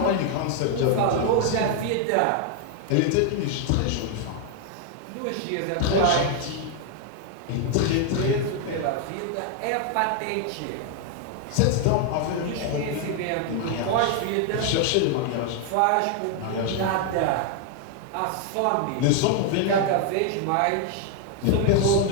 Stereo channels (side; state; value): both; different; correlation 0.00